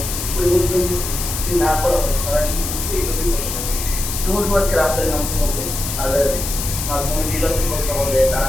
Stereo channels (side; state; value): left; noise; hiss, 5 dB below the sound